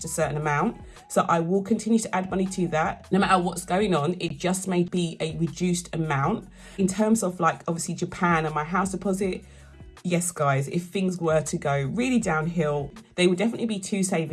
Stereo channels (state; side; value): identical; both; correlation 1.00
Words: a certain amount. So I will continue to add money to that. No matter what's going on, it just may be a reduced amount. In terms of like obviously Japan and my house deposit, yes, guys, if things were to go really downhill, they would definitely be 2